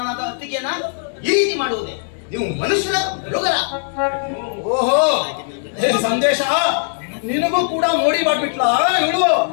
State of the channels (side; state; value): right; silent; 66 dB below the other